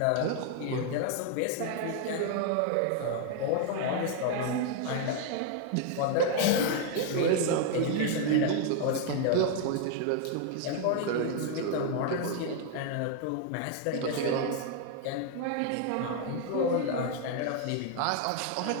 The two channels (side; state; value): both; different; correlation 0.00